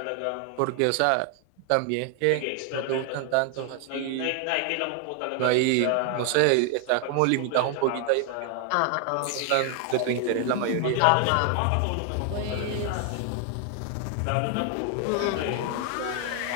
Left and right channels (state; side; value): different; both; correlation 0.00